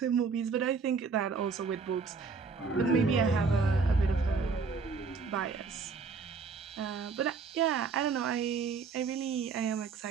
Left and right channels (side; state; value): left; quieter; 5.0 dB